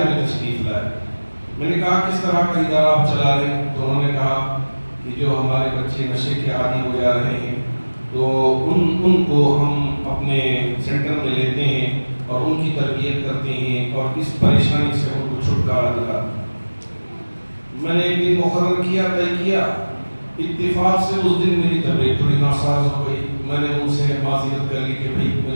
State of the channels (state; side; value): inverted; both; correlation -1.00